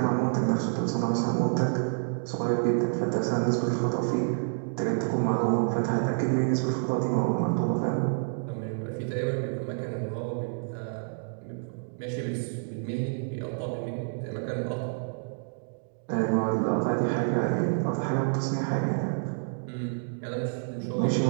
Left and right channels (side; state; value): left; silent; digital silence